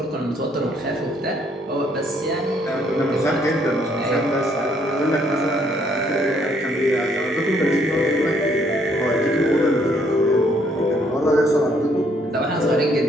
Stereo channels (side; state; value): both; normal; correlation 0.67